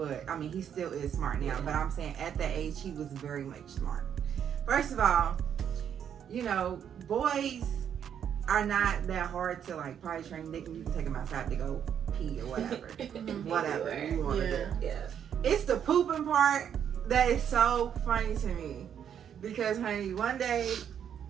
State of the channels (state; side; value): quieter; left; 8.7 dB